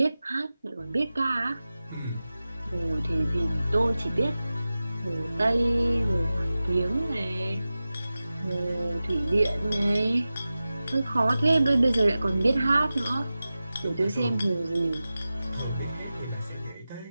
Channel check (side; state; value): both; inverted; correlation -0.95